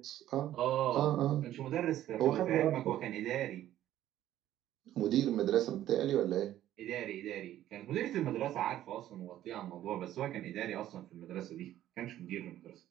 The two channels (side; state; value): left; quieter; 12.8 dB